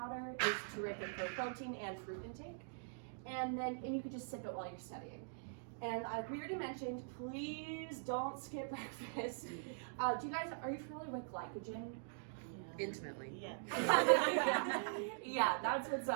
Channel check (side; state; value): left; silent; digital silence